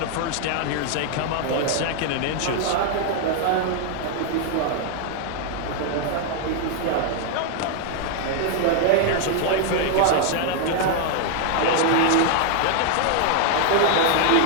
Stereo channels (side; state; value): both; different; correlation 0.00